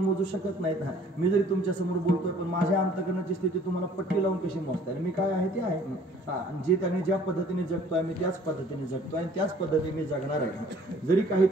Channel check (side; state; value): both; normal; correlation 0.55